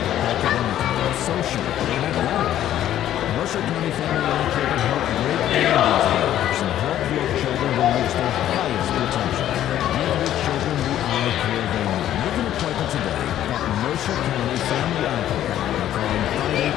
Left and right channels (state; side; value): quieter; right; 11.9 dB